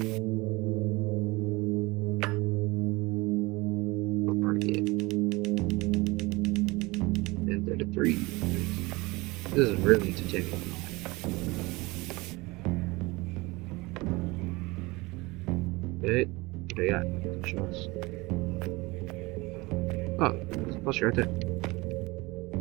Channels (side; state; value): left; quieter; 23.2 dB